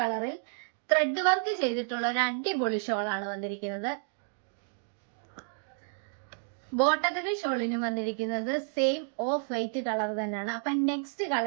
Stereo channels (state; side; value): silent; left; digital silence